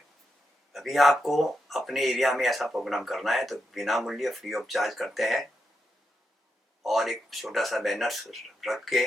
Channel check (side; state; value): both; normal; correlation 0.85